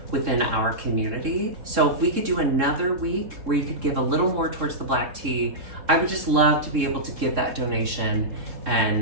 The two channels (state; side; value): late; left; 3.7 ms